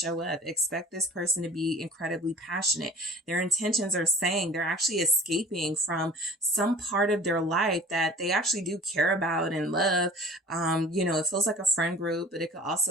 up. Expect this person to be incredibly passionate. Their intentions are saying they're actually escaping from some part of their life that they actually do care about and love. It feels like a friend group, but it could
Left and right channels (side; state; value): both; normal; correlation 0.45